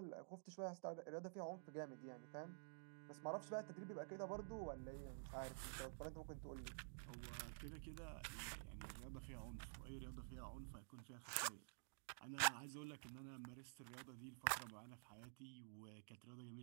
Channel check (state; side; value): silent; left; digital silence